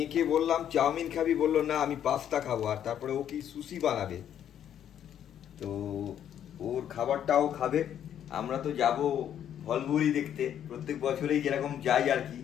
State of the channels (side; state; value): right; quieter; 9.9 dB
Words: বললাম চাউমিন খাবি, বললো না আমি পাস্তা খাবো। আর তারপরে ও কি সুশি বানাবে, তো ওর খাবারটাও খাবে। আমরা তো যাব ভলভুরি দেখতে, প্রত্যেক বছরেই যেরকম যাই আর কি।